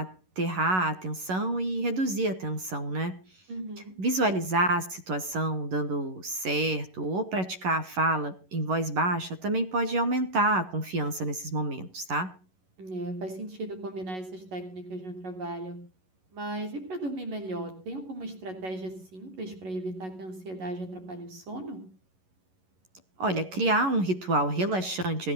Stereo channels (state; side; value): late; left; 11 ms